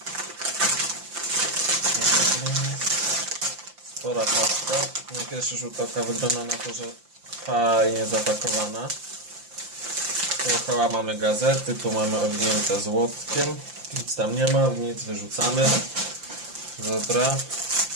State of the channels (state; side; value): late; left; 5.8 ms